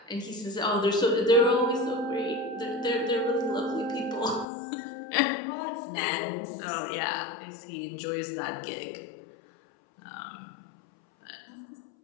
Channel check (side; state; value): right; drops out; at 4.5 s